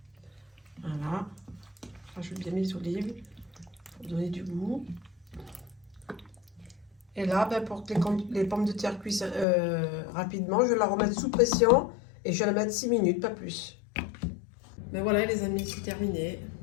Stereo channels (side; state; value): right; drops out; at 9.5 s